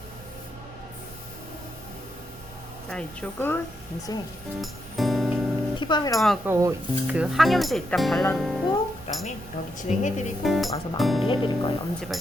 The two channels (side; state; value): right; noise; rumble, 20 dB below the sound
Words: 자, 이쪽은 이제 티밤이라고 하고 그 항염제 일단 발라놓고 그다음에 여기 진행해드리고 와서 마무리해드릴 거예요.